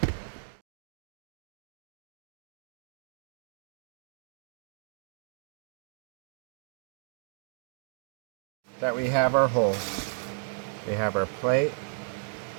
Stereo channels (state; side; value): silent; left; 55 dB below the other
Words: That we have our holes, we have our plate,